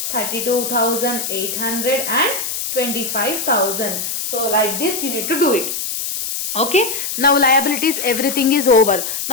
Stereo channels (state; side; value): noise; left; hiss, 4 dB below the sound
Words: 32,800 and 25,000. So like this you need to do it. Okay. Now liabilities, everything is over.